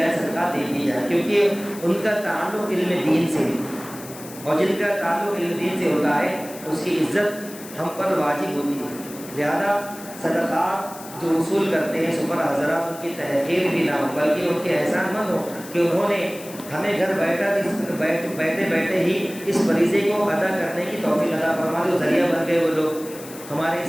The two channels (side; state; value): left; noise; hiss, 16 dB below the sound